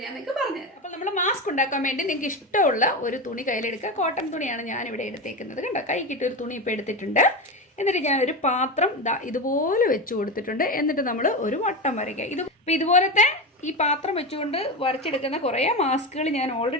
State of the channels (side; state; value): both; normal; correlation 0.19